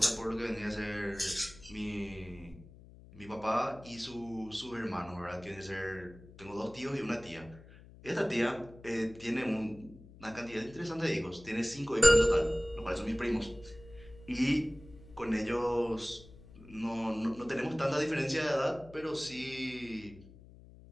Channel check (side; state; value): left; noise; hum, 20 dB below the sound